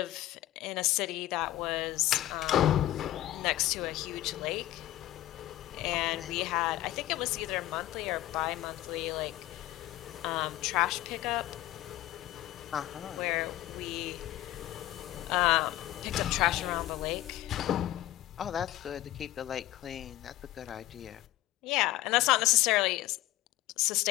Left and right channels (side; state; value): right; quieter; 15.4 dB